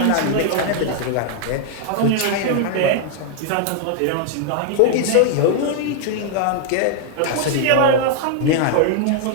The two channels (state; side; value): different; both; correlation 0.00